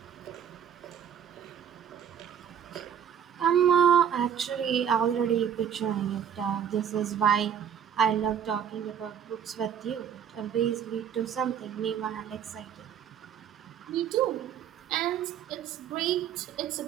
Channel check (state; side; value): quieter; left; 8.7 dB